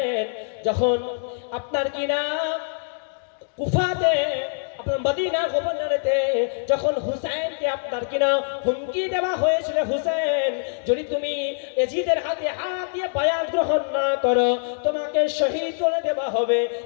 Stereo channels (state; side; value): silent; right; digital silence